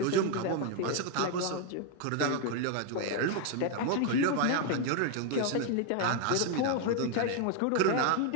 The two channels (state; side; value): different; both; correlation 0.01